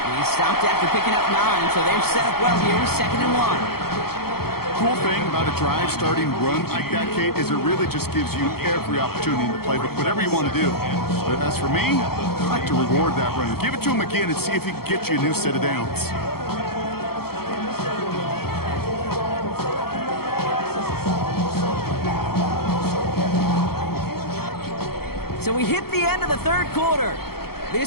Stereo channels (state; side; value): late; right; 0.95 ms